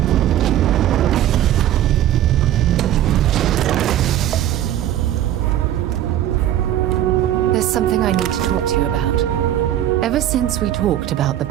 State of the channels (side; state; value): left; quieter; 12.1 dB